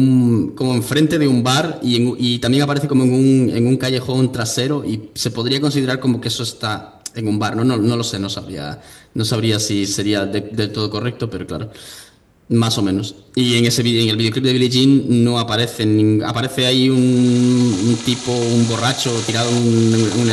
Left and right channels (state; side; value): identical; both; correlation 1.00